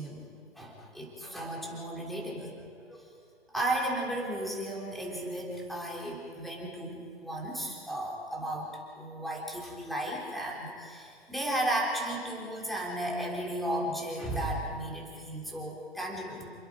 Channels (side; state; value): both; normal; correlation 0.52